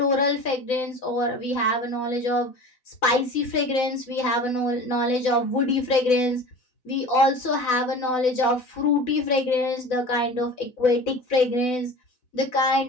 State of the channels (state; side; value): late; right; 4.0 ms